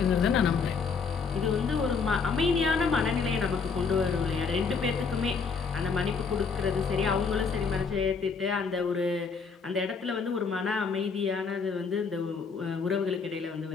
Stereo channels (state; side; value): quieter; right; 5.2 dB